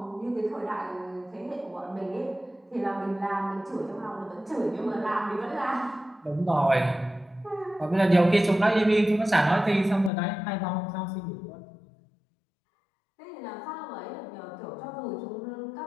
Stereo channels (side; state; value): right; drops out; at 10.1 s